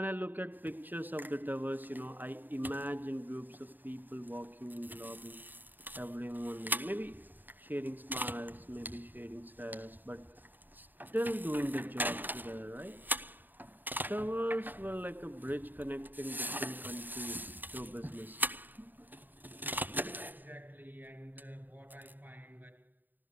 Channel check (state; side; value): late; left; 0.089 ms